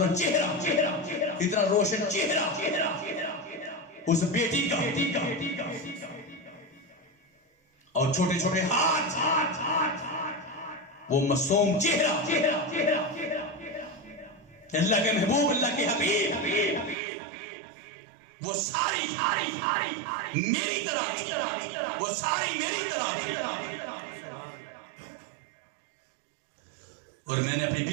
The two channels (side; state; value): left; drops out; at 16.9 s